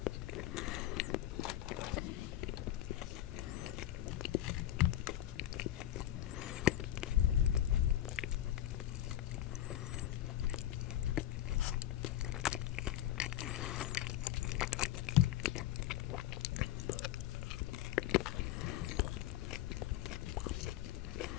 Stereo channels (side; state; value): right; quieter; 12.7 dB